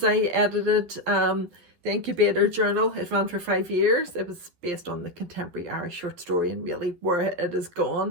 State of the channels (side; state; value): left; late; 12 ms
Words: I edited the Incubator journal. It ran for 5 years. It was based on the contemporary Irish short story and really where it has